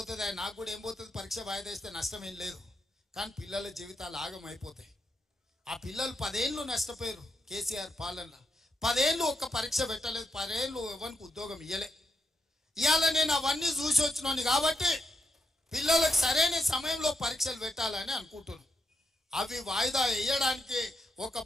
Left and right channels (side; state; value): both; normal; correlation 0.83